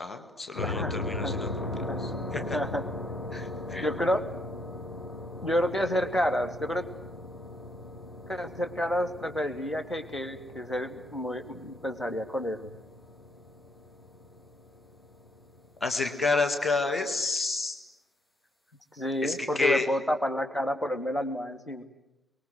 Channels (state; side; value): normal; both; correlation 0.72